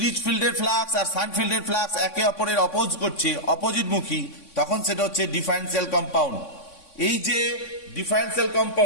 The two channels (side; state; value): right; late; 3.5 ms